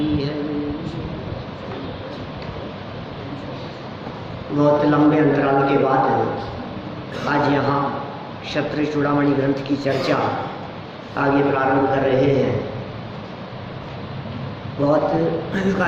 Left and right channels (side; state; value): both; identical; correlation 1.00